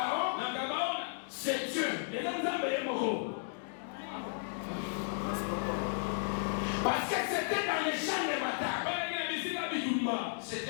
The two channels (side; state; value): right; silent; digital silence